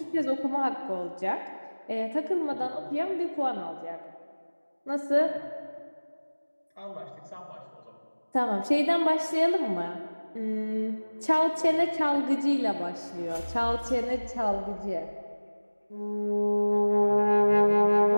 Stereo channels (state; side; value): inverted; both; correlation -1.00